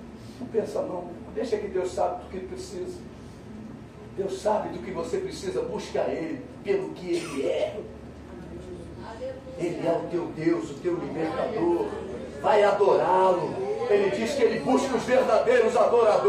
Não pensa não, deixa que Deus sabe do que precisa. Deus sabe do que você precisa. Busca Ele pelo que Ele é. Ele é o teu Deus, o teu libertador. Vai adorá-lo. Ele diz que Ele busca os verdadeiros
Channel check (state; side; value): identical; both; correlation 1.00